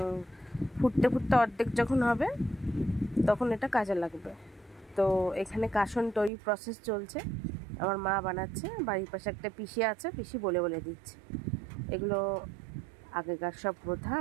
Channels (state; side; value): drops out; left; at 6.3 s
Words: ফুটতে ফুটতে অর্ধেক যখন হবে তখন এটা কাজে লাগবে। তো এখানে কাসন তৈরি প্রসেস চলছে, আমার মা বানাচ্ছে, বাড়ির পাশে একটা পিসি আছে, পিসি বলে বলে দিচ্ছে। এগুলো আগেকার সব প্রথা,